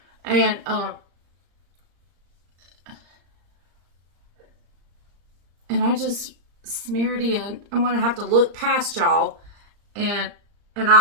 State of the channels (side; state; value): left; late; 35 ms